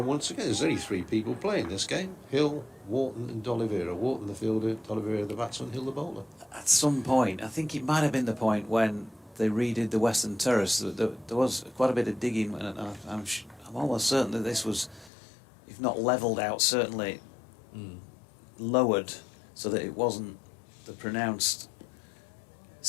once again. There's only 3 people playing this game. Hill, Wharton and D'Oliveira. Wharton the fielder, D'Oliveira the batsman, Hill the bowler. At some point, I think it might have been the point when they redid the Western Terrace. There was quite a bit of digging, and I'm almost certain that this was, if not levelled out, certainly lowered so that it wasn't the pronounced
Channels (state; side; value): drops out; right; at 15.1 s